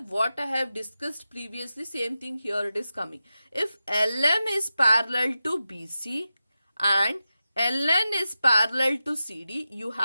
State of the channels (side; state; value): both; inverted; correlation -0.92